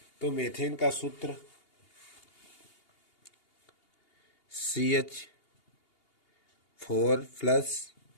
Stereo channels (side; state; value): right; late; 2.8 ms